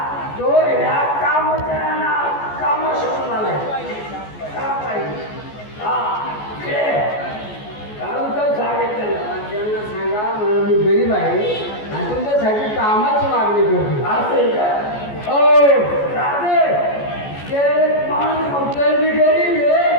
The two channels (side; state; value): right; late; 14 ms